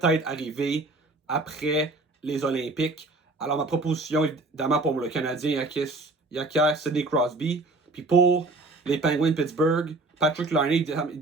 arriver après les Olympiques. Alors, ma proposition, évidemment, pour le Canadien, il acquiert Sidney Crosby. Puis pour les Penguins de Pittsburgh, Patrick Laine,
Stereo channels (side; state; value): left; quieter; 3.1 dB